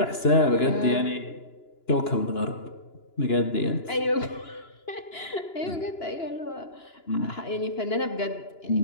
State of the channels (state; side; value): late; right; 2.9 ms